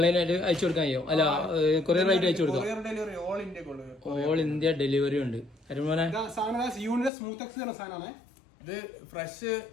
അയച്ചു കൊടുക്കാൻ കഴിയോ? അല്ല കൊറിയർ ആയിട്ട് അയച്ചു കൊടുക്കാം. ഓൾ ഇന്ത്യ ഡെലിവറി ഉണ്ട്. അരുമോനെ ഇത് ഫ്രഷ്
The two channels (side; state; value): right; drops out; at 7.1 s